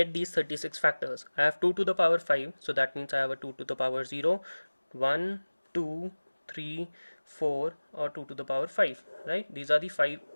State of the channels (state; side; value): inverted; both; correlation -1.00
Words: these 36 factors. I have 2 to the power 5, so that means I have a 2 to the power 0, 1, 2, 3, 4, or 2 to the power 5, right? These are the